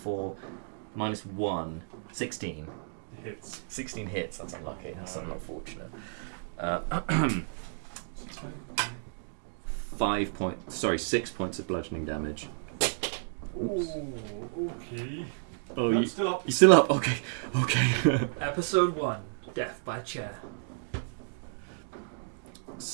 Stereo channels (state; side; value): silent; left; digital silence